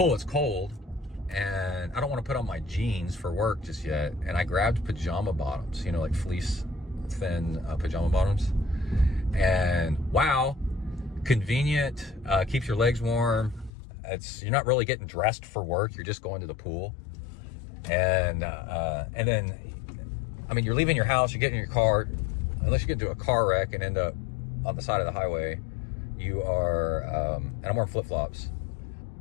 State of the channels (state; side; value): drops out; right; at 13.7 s